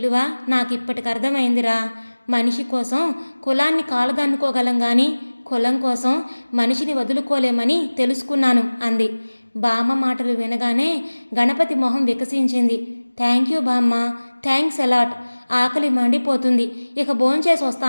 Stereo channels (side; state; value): both; inverted; correlation -1.00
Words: నాకిప్పటికి అర్థమైందిరా. మనిషి కోసం కులాన్ని కాలదన్నుకోగలం కానీ కులం కోసం మనిషిని వదులుకోలేమని తెలుసుకున్నాను అంది. బామ్మ మాటలు వినగానే గణపతి మొహం వికసించింది. థ్యాంక్ యూ బామ్మ, థ్యాంక్స్ అలాట్. ఆకలి మండిపోతుంది, ఇక భోంచేసి